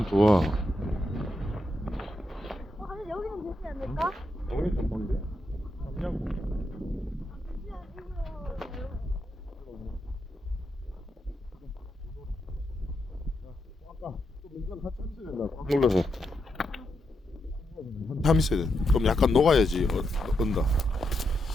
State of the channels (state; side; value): normal; both; correlation 0.83